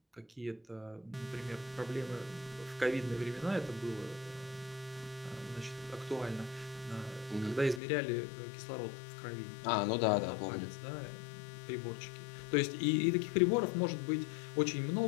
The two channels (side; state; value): right; drops out; at 7.8 s